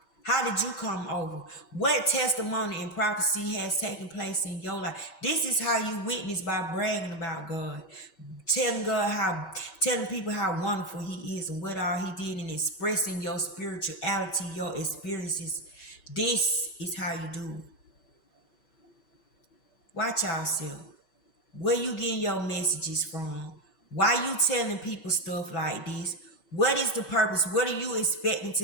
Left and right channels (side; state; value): right; late; 5.2 ms